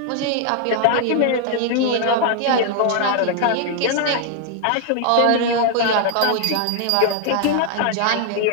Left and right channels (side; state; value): both; different; correlation 0.00